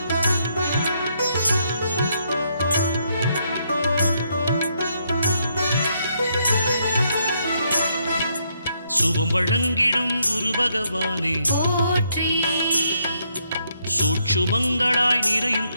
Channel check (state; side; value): inverted; both; correlation -0.75